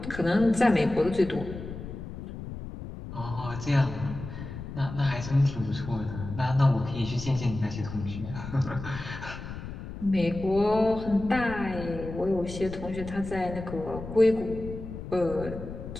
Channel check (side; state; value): left; noise; rumble, 10 dB below the sound